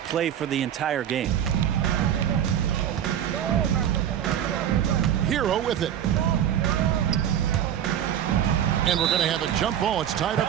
for the entire game. Hero with it. And we're going to have a jump ball. It's tied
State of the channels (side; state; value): left; quieter; 10.1 dB